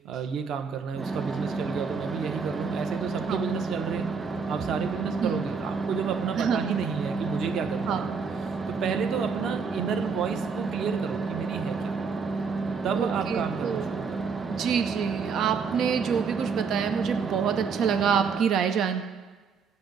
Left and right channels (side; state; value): left; quieter; 5.6 dB